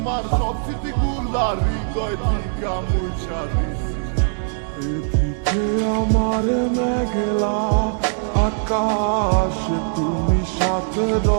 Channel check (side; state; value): left; silent; digital silence